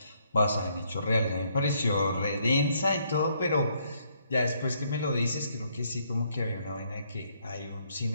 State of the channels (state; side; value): inverted; both; correlation -0.70